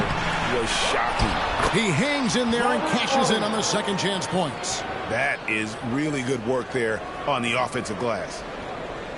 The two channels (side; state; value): both; identical; correlation 1.00